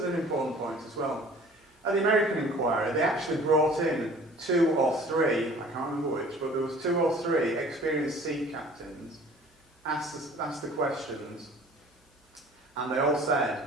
an important point as well. At the American inquiry, they actually brought in 2 or 3, I can't remember which, but there was 2 or 3 experienced sea captains asked the questions, and they all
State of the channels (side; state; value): both; normal; correlation 0.48